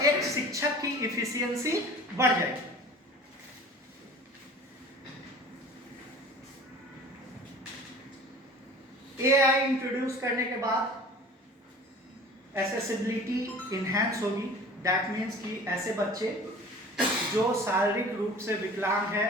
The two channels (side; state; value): both; normal; correlation 0.43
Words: एक शिक्षक की इफिशियंसी बढ़ जाएगी। एआई इंट्रोड्यूस करने के बाद एसेसिबिलिटी इनहैंस होगी। दैट मीन्स कि ऐसे बच्चे जो शारीरिक रूप से विकलांग है,